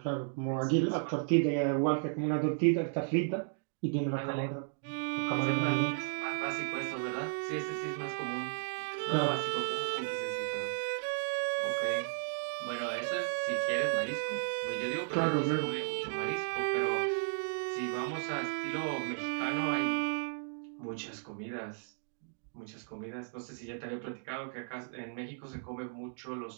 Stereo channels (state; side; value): silent; left; digital silence